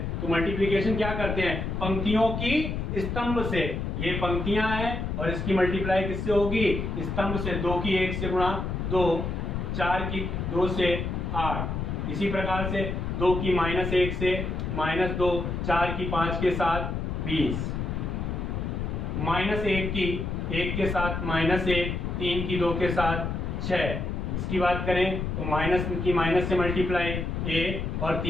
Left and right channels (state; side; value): noise; left; rumble, 3 dB below the sound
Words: तो मल्टीप्लिकेशन क्या करते हैं, पंक्तियों की स्तंभ से, ये पंक्तियां हैं और इसकी मल्टीप्लाई किससे होगी, स्तंभ से। 2 की 1 से गुणा 2, 4 की 2 से 8, इसी प्रकार से 2 की -1 से -2, 4 की 5 के साथ 20, -1 की 1 के साथ -1, 3 की 2 के साथ 6। इसकी बात करें तो माइनस की माइनस से मल्टीप्लाई a और